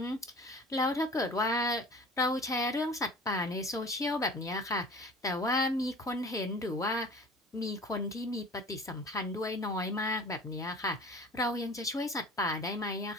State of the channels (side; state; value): both; normal; correlation 0.43